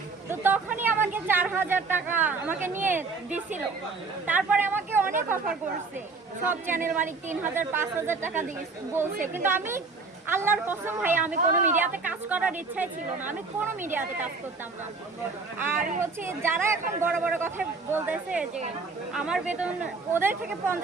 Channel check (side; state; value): left; quieter; 4.2 dB